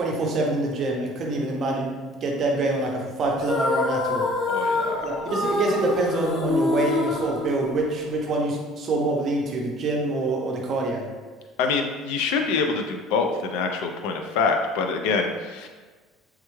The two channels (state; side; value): normal; both; correlation 0.48